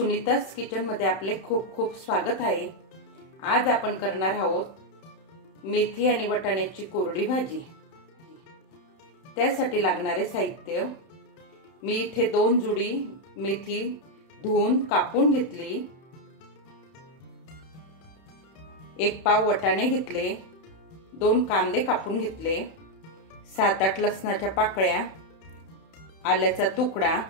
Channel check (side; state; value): right; late; 31 ms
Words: किचन मध्ये आपले खूप खूप स्वागत आहे। आज आपण करणार आहोत मेथी आणि वाटाण्याची कोरडी भाजी। त्यासाठी लागणारे साहित्य, मी इथे 2 जुडी मेथी धुवून कापून घेतली, 1 पाव वाटाणे घेतले, 2 कांदे कापून घेतले, 7-8 लसणाच्या पाकळ्या, आल्याचा तुकडा,